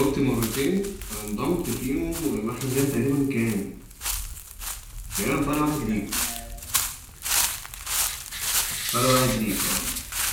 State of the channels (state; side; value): identical; both; correlation 1.00